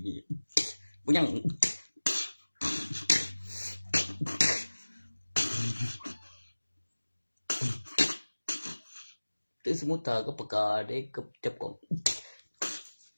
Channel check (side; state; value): both; inverted; correlation -1.00